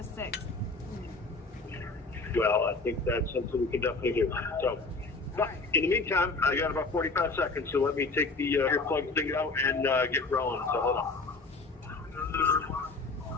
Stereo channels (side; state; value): right; quieter; 3.7 dB